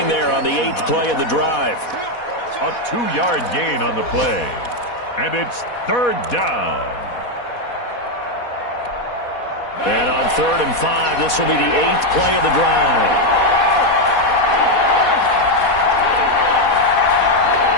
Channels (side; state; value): right; late; 4.1 ms